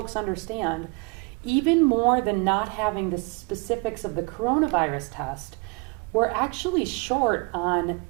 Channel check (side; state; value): left; quieter; 30.2 dB